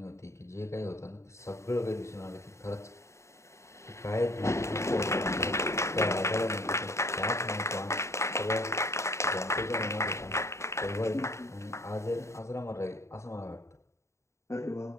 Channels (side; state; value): right; late; 0.14 ms